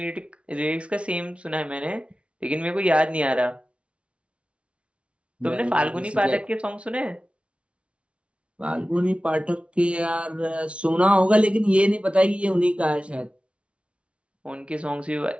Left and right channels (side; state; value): left; late; 0.060 ms